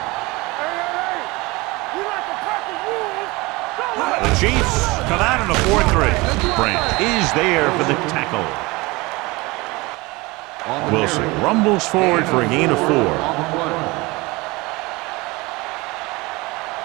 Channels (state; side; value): quieter; left; 23.3 dB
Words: Hey, we like to practice rules. The Chiefs come out in a 4-3. Brandt is there for the tackle. Wilson rumbles forward for a gain of 4.